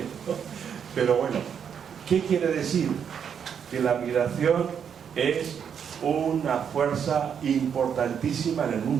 ¿no? Pero bueno, ¿qué quiere decir? Que la migración es una fuerza importantísima en el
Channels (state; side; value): quieter; left; 7.7 dB